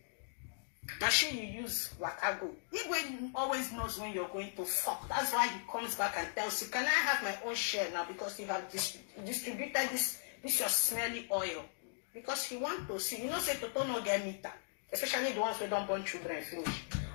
Machine you use Wakago. Igwe always knows when you're going to fuck. That's why he comes back and tells you, can I have my own share now? Because you have distributed this your smelly oil. Because he wants to see. You know, say Toto no get meter. Especially the ones who don't born children finish.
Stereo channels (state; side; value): silent; right; digital silence